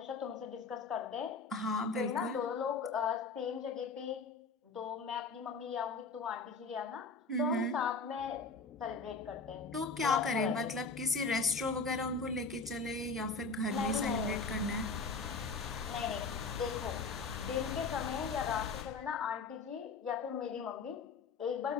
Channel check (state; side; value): quieter; right; 4.2 dB